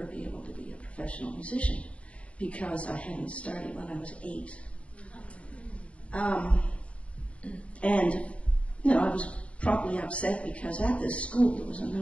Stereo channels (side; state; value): right; late; 0.063 ms